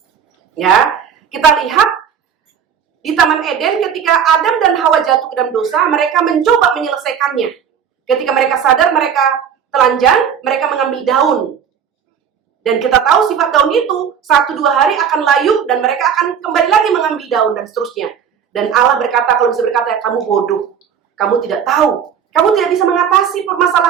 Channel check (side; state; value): left; quieter; 7.8 dB